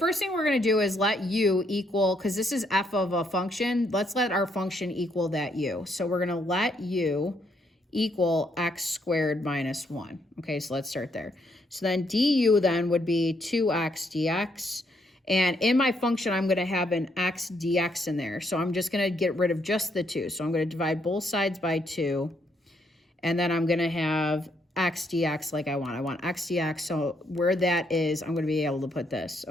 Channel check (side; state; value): both; normal; correlation 0.73